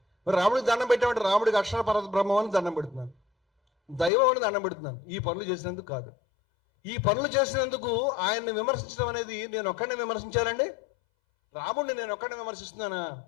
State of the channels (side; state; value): right; drops out; at 4.1 s